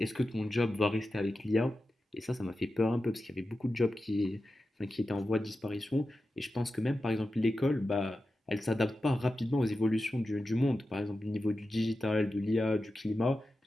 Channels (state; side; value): normal; both; correlation 0.92